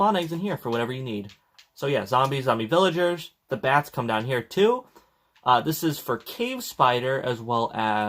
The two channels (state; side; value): identical; both; correlation 1.00